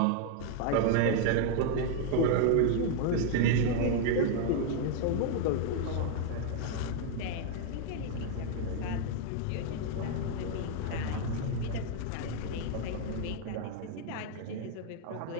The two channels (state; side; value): different; both; correlation 0.00